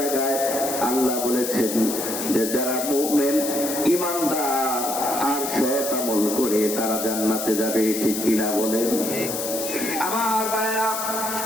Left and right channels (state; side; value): noise; left; hiss, 5 dB below the sound